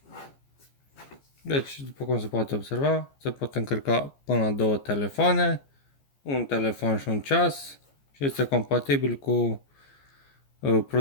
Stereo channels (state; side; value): late; right; 14 ms